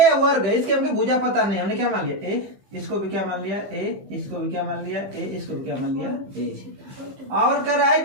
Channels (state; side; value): late; left; 15 ms